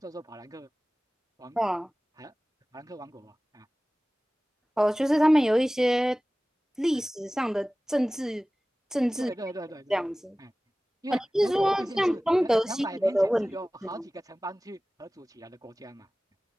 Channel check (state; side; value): normal; both; correlation 0.98